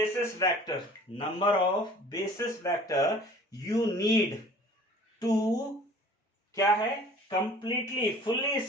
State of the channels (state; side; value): normal; both; correlation 0.48